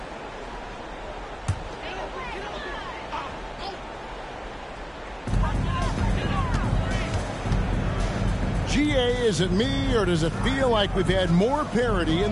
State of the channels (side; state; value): both; identical; correlation 1.00